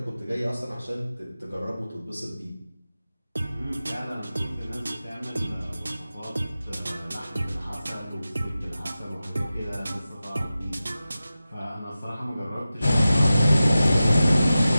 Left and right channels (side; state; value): both; inverted; correlation -0.94